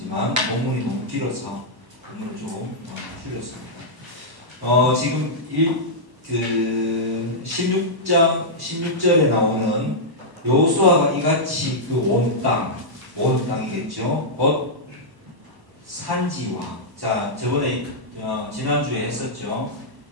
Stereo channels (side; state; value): left; late; 1.1 ms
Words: 본문이 너무 길어서 본문을 좀 줄였습니다. 지금 16절에 나오는 여호수아가 이같이 그 온 땅이겠죠. 곧 산지와, 자 저번에 지난주에 했었죠.